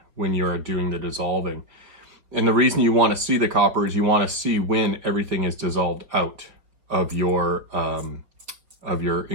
when you're doing the dissolving. And the reason you want to see the copper is you want to see when everything is dissolved out of your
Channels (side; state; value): left; late; 4.7 ms